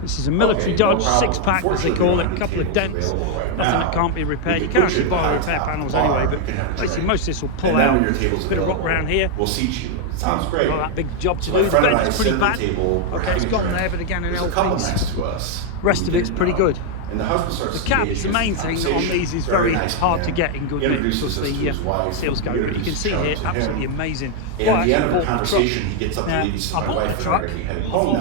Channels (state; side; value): different; both; correlation 0.00